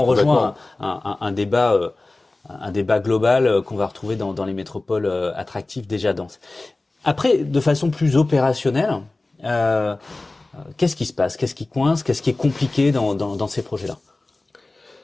rejoint un débat global qu'on va retrouver dans les métropoles attractives déjà denses. Après, de façon plus opérationnelle, qu'est-ce qui se passe? Qu'est-ce qui coince? Qu'est-ce qui est compliqué dans ces projets-là?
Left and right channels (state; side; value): quieter; right; 3.1 dB